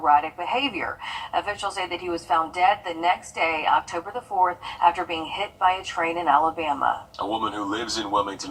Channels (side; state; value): both; identical; correlation 1.00